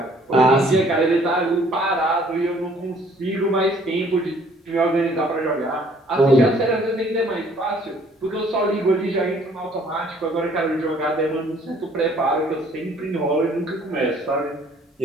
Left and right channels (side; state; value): both; normal; correlation 0.59